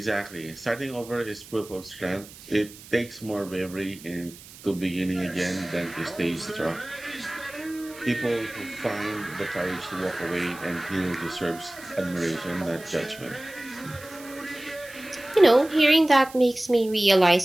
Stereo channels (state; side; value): noise; right; hiss, 18 dB below the sound